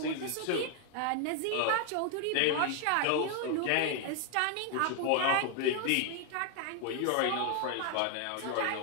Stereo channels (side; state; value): both; different; correlation 0.00